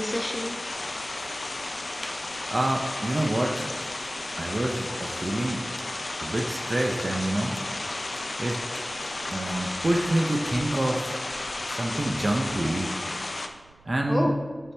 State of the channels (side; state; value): right; noise; rumble, 27 dB below the sound